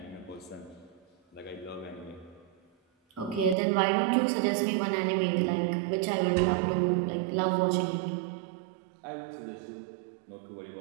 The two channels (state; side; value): drops out; left; at 3.6 s